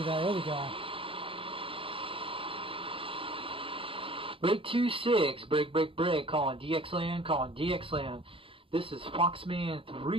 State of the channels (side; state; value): left; late; 0.26 ms